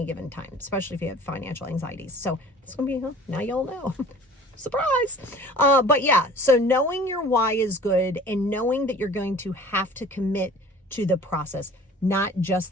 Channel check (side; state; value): both; normal; correlation 0.47